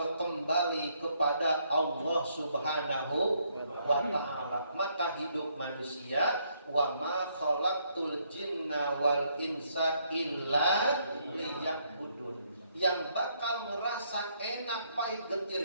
kembali kepada Allah Subhanahu wa ta'ala. Maka hidup manusia, wa ma khalaqtul jinna wal insa illa liya'budun, yang bakal merasa enak pahit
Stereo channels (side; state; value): both; inverted; correlation -0.72